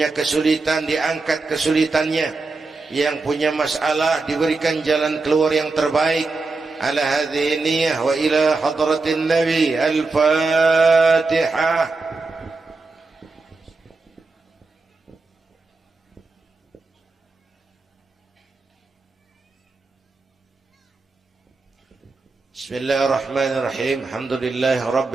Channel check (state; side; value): quieter; left; 3.7 dB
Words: kesulitan diangkat kesulitannya, yang punya masalah diberikan jalan keluar yang terbaik. Ala hadhihi niyyah wa ila hadratin nabi. Al-Fatihah. Bismillahirrahmanirrahim. Alhamdulillahi